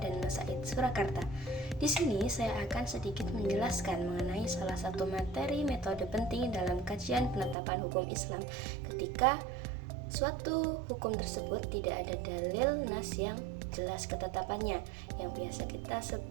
Said Surakarta. Di sini saya akan sedikit menjelaskan mengenai salah satu materi metode penting dalam kajian penetapan hukum Islam ketika suatu hukum tersebut tidak ada dalil nas yang jelas ketetapannya. Yang biasa kita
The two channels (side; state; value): left; drops out; at 7.6 s